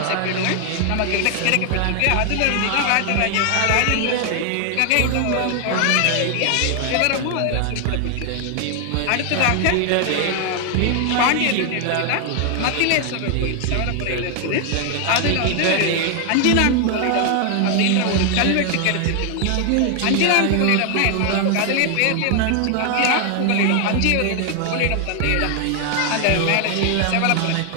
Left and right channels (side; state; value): both; different; correlation 0.00